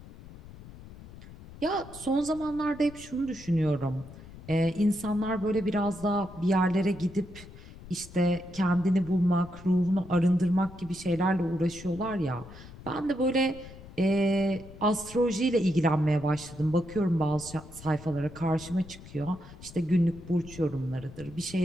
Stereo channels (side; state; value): left; noise; rumble, 17 dB below the sound